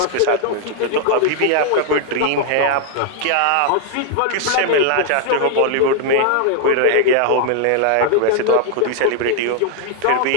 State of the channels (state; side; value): different; both; correlation 0.00